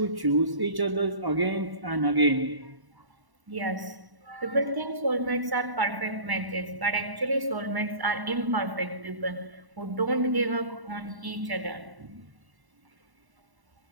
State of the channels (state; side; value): late; left; 1.1 ms